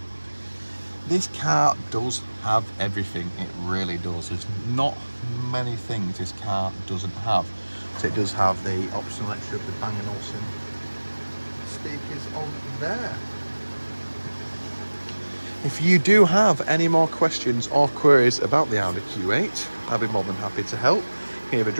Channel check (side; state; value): both; inverted; correlation -1.00